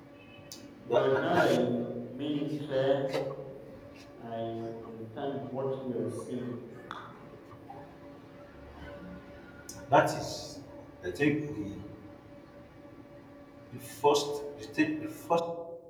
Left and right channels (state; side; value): identical; both; correlation 1.00